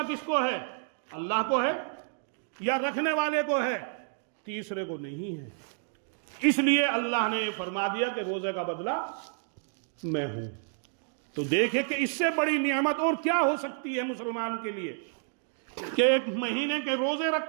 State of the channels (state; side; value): silent; left; digital silence